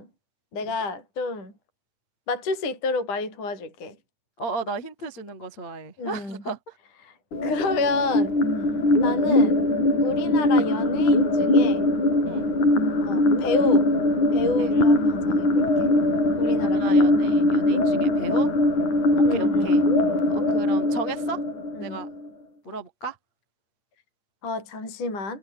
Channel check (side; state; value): right; late; 10 ms